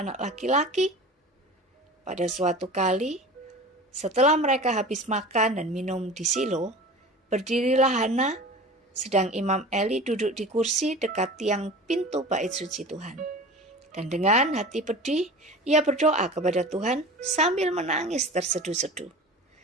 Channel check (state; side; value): normal; both; correlation 0.36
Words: laki-laki?" Pada suatu kali, setelah mereka habis makan dan minum di Silo, berdirilah Hana, sedang Imam Eli duduk di kursi dekat tiang pintu bait suci Tuhan. Dan dengan hati pedih, ia berdoa kepada Tuhan sambil menangis terseduh-seduh.